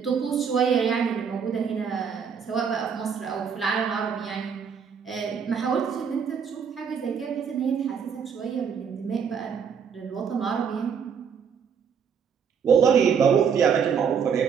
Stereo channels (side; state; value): left; quieter; 6.9 dB